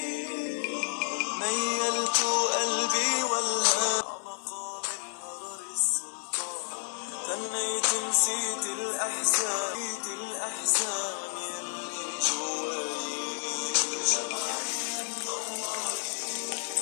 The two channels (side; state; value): right; silent; 55 dB below the other